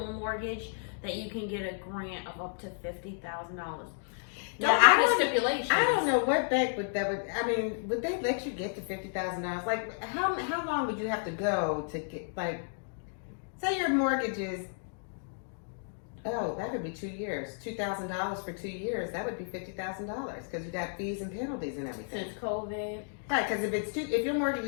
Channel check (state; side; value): silent; right; digital silence